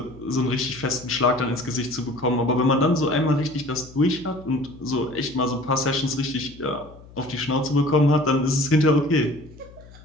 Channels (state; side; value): noise; left; hum, 21 dB below the sound